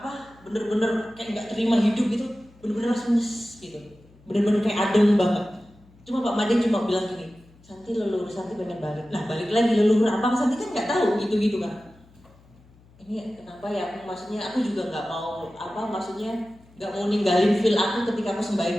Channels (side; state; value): left; noise; hum, 27 dB below the sound